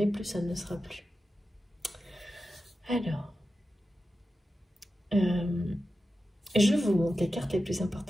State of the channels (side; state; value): both; normal; correlation 0.92